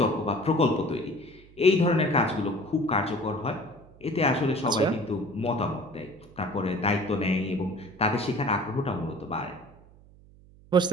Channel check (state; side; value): noise; right; hum, 24 dB below the sound